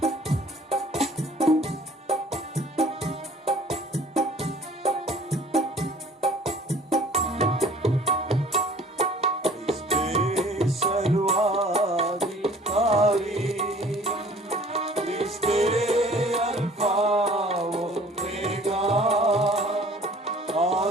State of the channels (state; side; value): normal; both; correlation 0.51